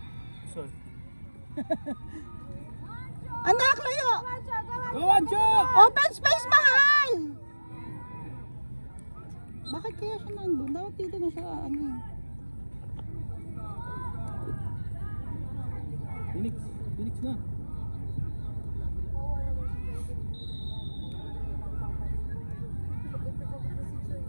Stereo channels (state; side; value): inverted; both; correlation -1.00